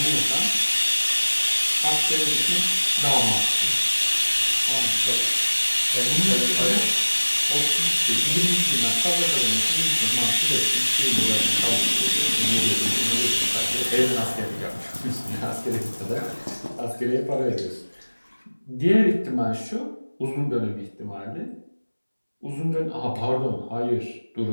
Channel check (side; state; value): both; inverted; correlation -1.00